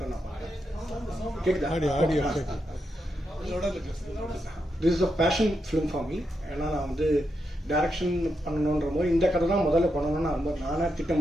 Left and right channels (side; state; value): both; normal; correlation 0.84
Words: நான் பார்க்குறேன். கேட்குதா? This is a passion film for me. ஏன்னா நான் வந்து டைரக்ஷன் பண்ணணுன்ற போது இந்த கதை தான் முதல்ல பண்ணணும்னு ரொம்ப நானே